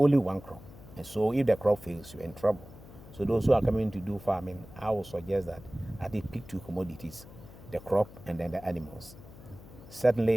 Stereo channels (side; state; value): left; noise; hum, 18 dB below the sound